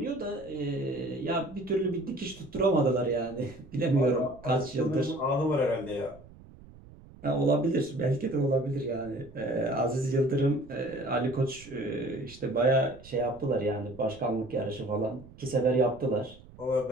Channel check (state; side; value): noise; right; rumble, 21 dB below the sound